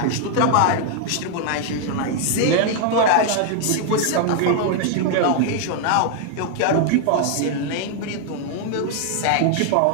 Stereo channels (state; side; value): different; both; correlation 0.00